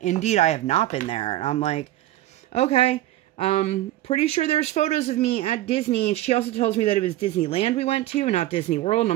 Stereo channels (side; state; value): left; quieter; 15.0 dB